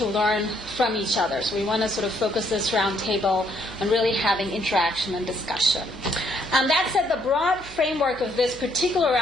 learn from each other. So we want to sort of focus this roundtable on really having interaction and discussion. That said, the broad framework of this particular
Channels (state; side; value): noise; right; hum, 19 dB below the sound